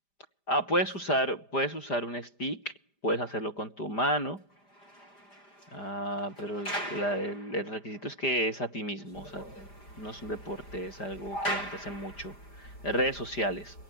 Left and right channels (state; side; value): late; right; 5.0 ms